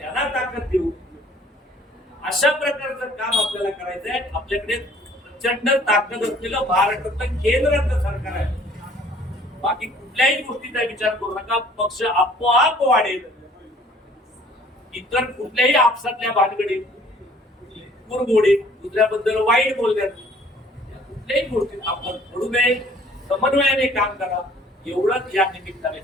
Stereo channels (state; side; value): normal; both; correlation 0.55